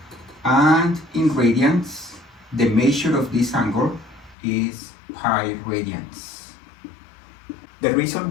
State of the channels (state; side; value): drops out; right; at 4.4 s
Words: and in radians the measure of this angle is pi radians. The reason